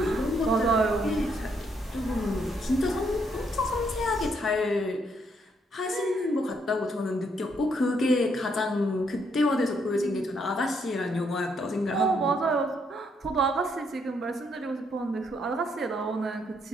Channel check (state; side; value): normal; both; correlation 0.73